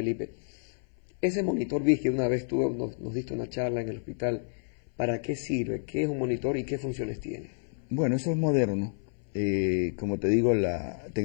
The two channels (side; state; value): right; silent; 58 dB below the other